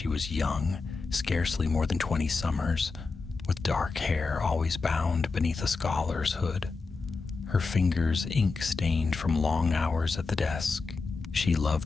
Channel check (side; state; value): right; quieter; 4.2 dB